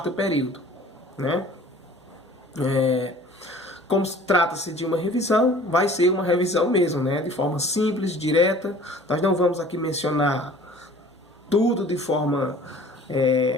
período. Como trata-se de uma revisão, vai ser uma revisão mesmo, de forma simples, direta. Nós não vamos aqui mencionar tudo de forma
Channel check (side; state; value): both; normal; correlation 0.48